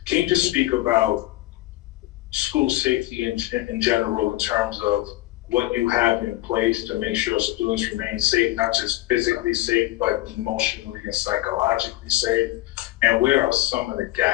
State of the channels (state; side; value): quieter; right; 17.5 dB